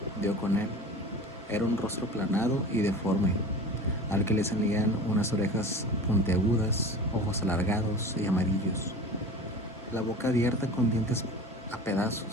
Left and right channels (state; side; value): normal; both; correlation 0.36